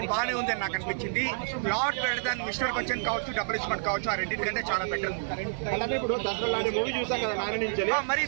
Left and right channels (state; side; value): silent; left; 59 dB below the other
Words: బాగానే ఉందని నాకు అనిపించింది. Lot better than mister Bachchan కావచ్చు, డబుల్ ఇస్మెంట్ కావచ్చు, ఆ రెండింటికంటే చాలా బెటర్. ఇప్పుడు దసరా మూవీ చూసాం కదా నాని నుంచి. మరి